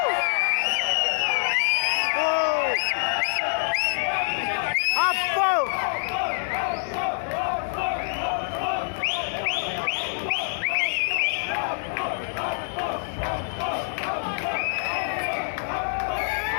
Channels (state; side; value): silent; right; digital silence